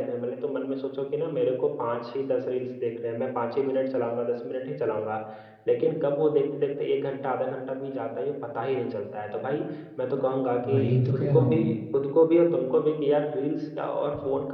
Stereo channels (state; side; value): identical; both; correlation 1.00